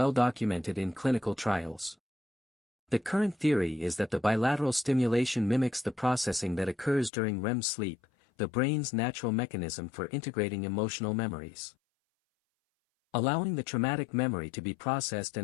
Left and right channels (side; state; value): right; drops out; at 7.1 s